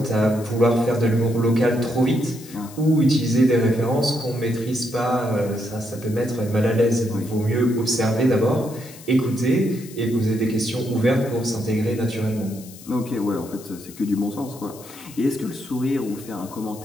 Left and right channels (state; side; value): noise; left; hiss, 19 dB below the sound